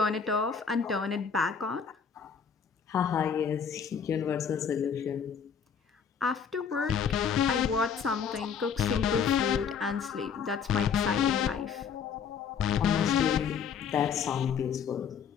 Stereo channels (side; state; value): right; quieter; 6.9 dB